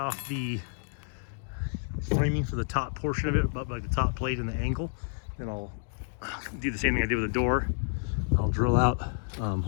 the framing for the top portion of it, about like the top plate and the angle. Then I'll do the same thing I did with the door. I'll drill out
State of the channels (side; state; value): right; silent; digital silence